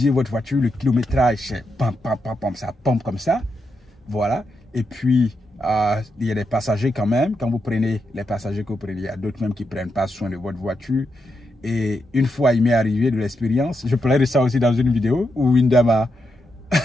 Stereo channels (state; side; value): normal; both; correlation 0.84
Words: votre voiture, le kilométrage, c'est pam, pam, pam, pam, ça pompe comme ça. Voilà. Et puis, il y a des passagers quand même. Quand vous prenez les passagers que vous prenez, il y a d'autres même qui ne prennent pas soin de votre voiture. Et une fois, il m'est arrivé de l'expérience. Je parlerai de ça aussi dans une vidéo où une dame a...